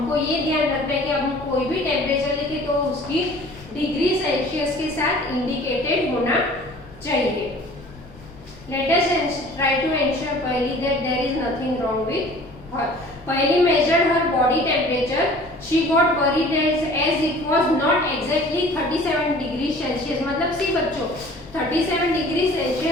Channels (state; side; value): noise; left; rumble, 21 dB below the sound